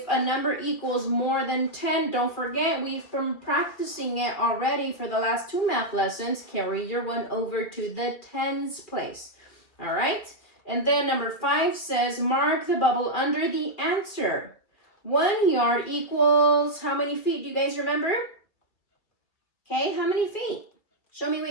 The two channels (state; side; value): late; right; 2.3 ms